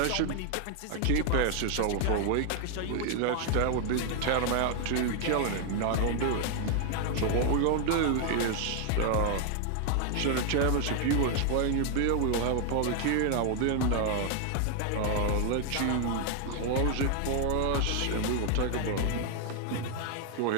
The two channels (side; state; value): both; different; correlation 0.00